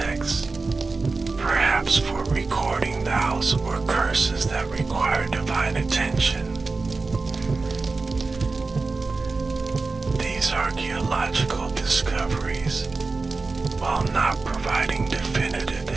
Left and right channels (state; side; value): quieter; left; 3.9 dB